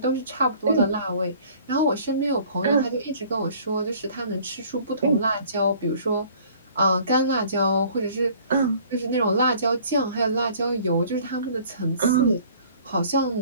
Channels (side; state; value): both; inverted; correlation -0.53